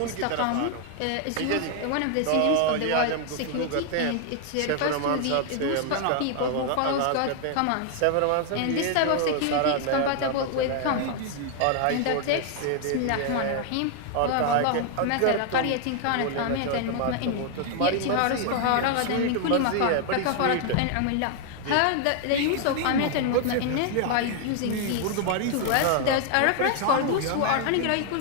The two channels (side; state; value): both; different; correlation 0.00